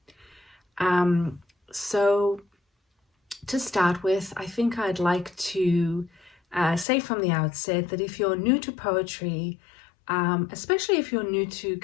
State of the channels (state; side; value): drops out; right; at 6.9 s